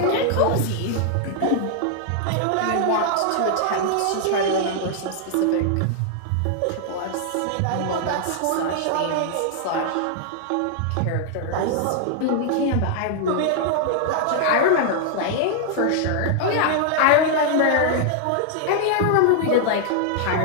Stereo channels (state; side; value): different; both; correlation 0.00